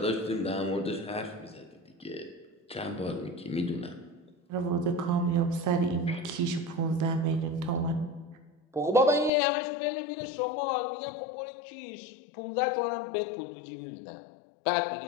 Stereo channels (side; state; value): right; drops out; at 9.3 s